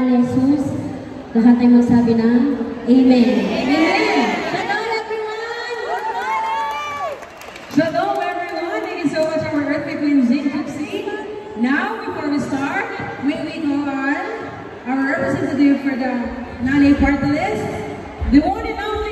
ni Jesus, lahat ay magsabi ng Amen. Amen. Shalom everyone! Shalom everyone! Thank you so much our Earthquake Queen Zing Gypsy. Now, before we start, may we call on our representative for the Nanay Party List, the one and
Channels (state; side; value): identical; both; correlation 1.00